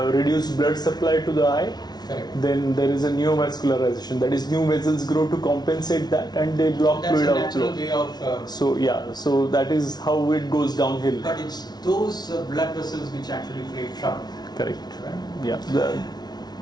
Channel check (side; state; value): right; late; 0.19 ms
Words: blood supply to the eye, Correct. then there is a neovascularization. That is, new vessels grow to compensate that, and they block That's fluid a natural outflow. way of. So that is how it goes downhill. But it's those blood vessels which actually create trouble. Correct. Right? Yeah.